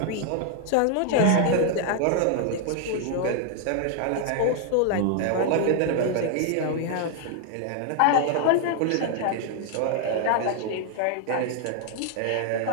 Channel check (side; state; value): both; different; correlation 0.00